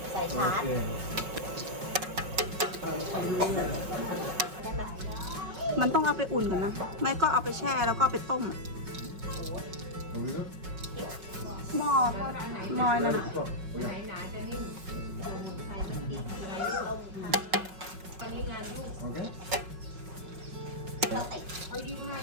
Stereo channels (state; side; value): late; left; 5.4 ms